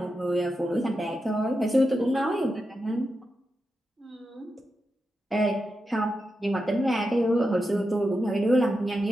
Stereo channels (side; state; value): both; normal; correlation 0.88